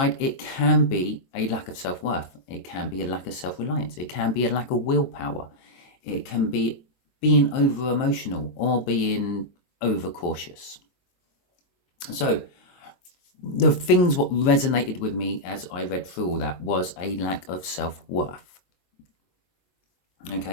it can be a lack of self-worth. It can be a lack of self-reliance. It can be a lack of willpower. It can be being over-emotional or being over-cautious. So the things what resonated with me as I read through all that was a lack of self-worth.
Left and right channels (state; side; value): late; right; 22 ms